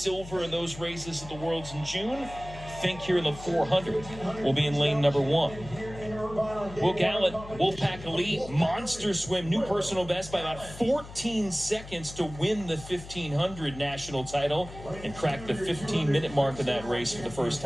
in those races at the Worlds in June. Fink here in the 400 will be in lane number 1. Will Gallant, Wolfpack Elite, monster swim, new personal best by about 14 seconds to win the 1500 national title and crack the 15-minute mark of that race for the first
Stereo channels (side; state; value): left; noise; hum, 15 dB below the sound